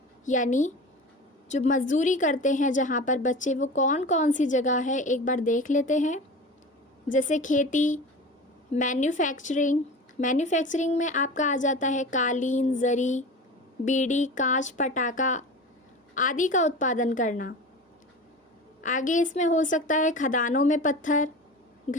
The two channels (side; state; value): both; normal; correlation 0.33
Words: यानी जो मजदूरी करते हैं जहाँ पर बच्चे, वो कौन कौन सी जगह है एक बार देख लेते हैं। जैसे खेती, मैन्युफैक्चरिंग। मैन्युफैक्चरिंग में आपका आ जाता है कालीन, जरी, बीड़ी, कांच, पटाखा आदि का उत्पादन करना। आगे इसमें हो सकता है खदानों में पत्थर,